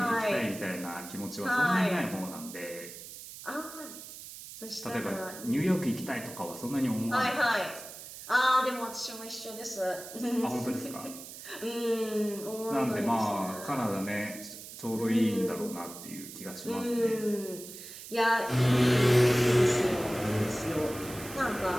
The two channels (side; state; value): right; noise; hiss, 13 dB below the sound